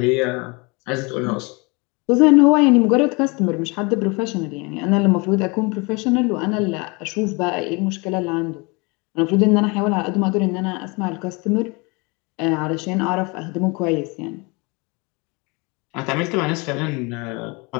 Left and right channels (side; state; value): right; quieter; 28.3 dB